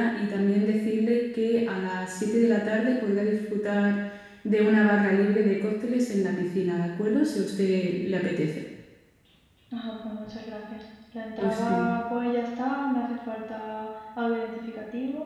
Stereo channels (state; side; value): identical; both; correlation 1.00